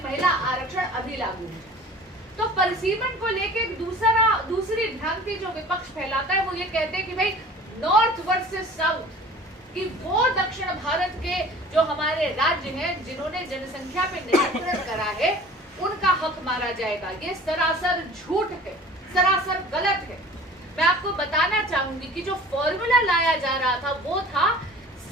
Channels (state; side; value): normal; both; correlation 0.44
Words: महिला आरक्षण अभी लागू हो। तो परिसीमन को लेके दूसरी भ्रांति जो विपक्ष फैलाता है, वो ये कहते हैं कि भाई नॉर्थ वर्सेस साउथ, कि वो दक्षिण भारत के जो हमारे राज्य हैं जिन्होंने जनसंख्या पे नियंत्रण करा है, उनका हक मारा जाएगा। ये सरासर झूठ है, सरासर गलत है। मैं आपको बताना चाहूंगी कि जो फॉर्मूला लाया जा रहा था वो था